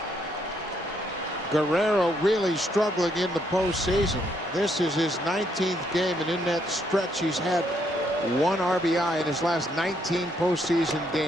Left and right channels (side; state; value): both; normal; correlation 0.73